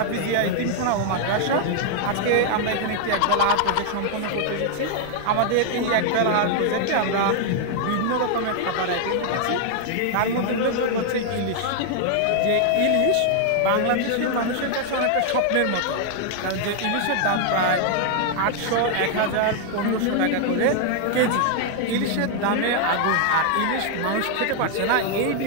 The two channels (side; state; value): both; different; correlation 0.00